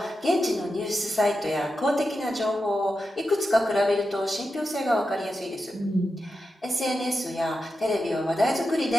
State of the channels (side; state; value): both; normal; correlation 0.89